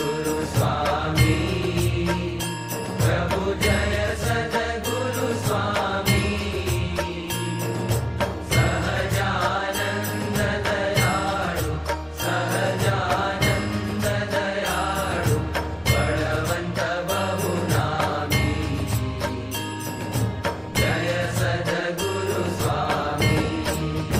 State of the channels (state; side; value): identical; both; correlation 1.00